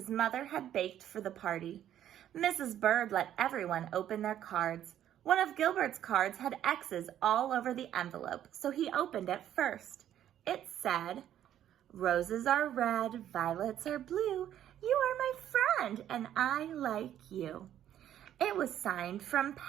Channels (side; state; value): left; quieter; 11.1 dB